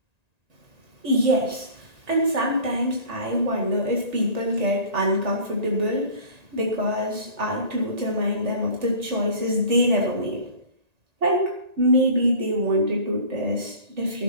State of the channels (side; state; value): left; late; 1.8 ms